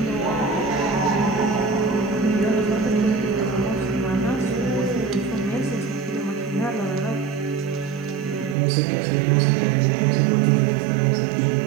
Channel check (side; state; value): left; drops out; at 8.6 s